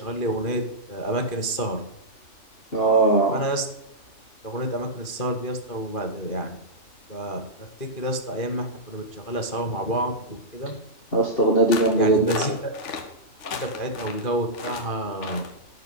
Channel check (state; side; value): late; right; 2.5 ms